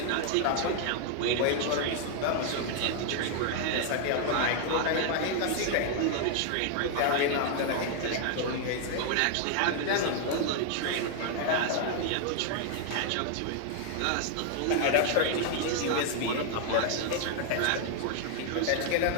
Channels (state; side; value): different; both; correlation 0.00